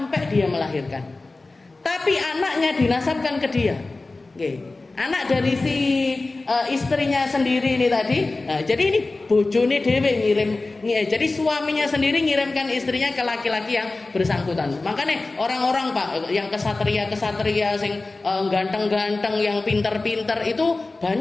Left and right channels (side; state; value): right; quieter; 3.3 dB